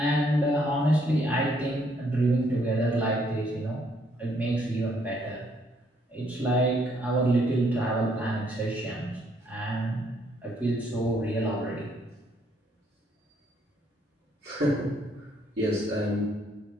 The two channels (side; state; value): both; normal; correlation 0.69